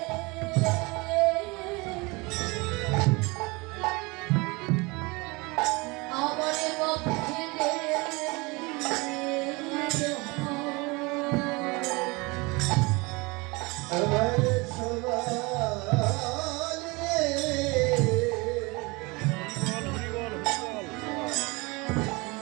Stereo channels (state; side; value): quieter; left; 25.8 dB